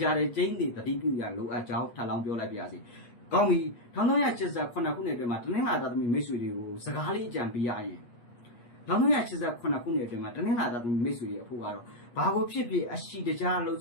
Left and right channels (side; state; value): right; late; 8.4 ms